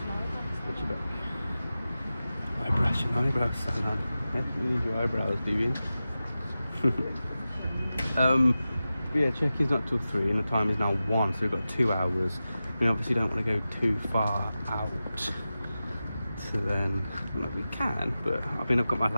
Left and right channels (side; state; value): both; inverted; correlation -0.94